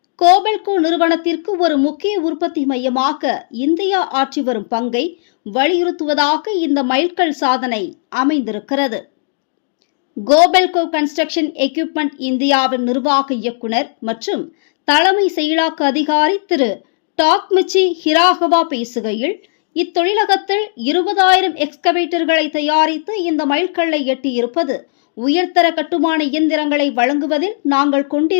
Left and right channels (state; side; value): silent; right; digital silence